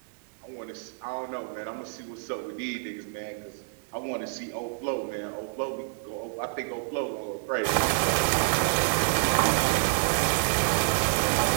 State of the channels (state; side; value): silent; left; digital silence